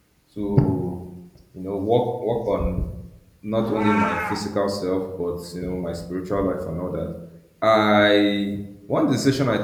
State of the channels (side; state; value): both; identical; correlation 1.00